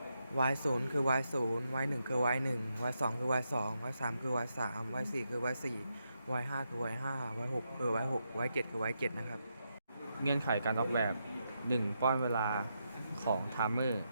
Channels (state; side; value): inverted; both; correlation -0.83